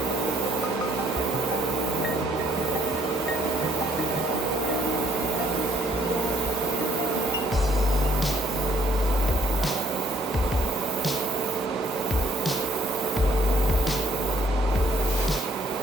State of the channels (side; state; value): both; normal; correlation 0.65